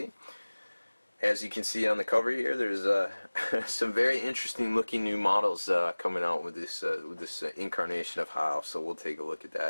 As you can see on the cover here, there's some very interesting looking new models coming out with this incarnation of High Elves, so we'll take a look at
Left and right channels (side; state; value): both; inverted; correlation -1.00